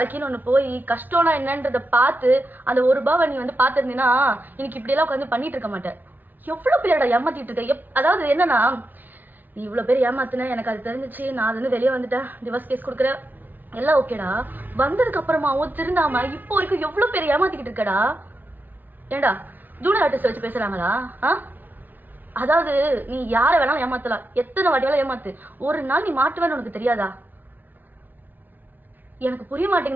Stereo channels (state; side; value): late; left; 0.086 ms